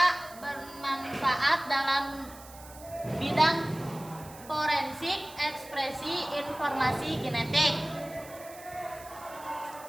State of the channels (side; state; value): right; noise; hiss, 19 dB below the sound